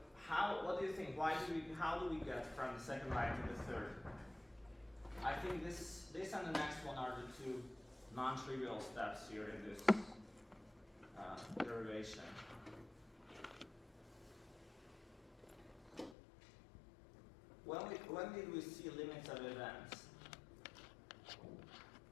what do you think? How do we get from the second line to the third? I think this this and the next one are the two non-trivial steps here in this derivation. When did we see limits of events?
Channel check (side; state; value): right; drops out; at 16.2 s